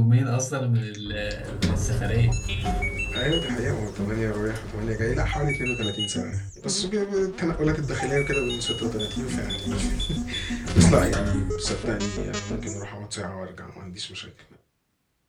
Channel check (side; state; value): both; identical; correlation 1.00